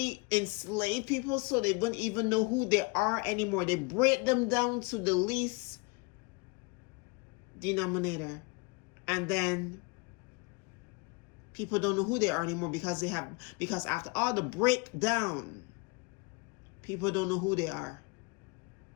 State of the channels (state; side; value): quieter; right; 28.8 dB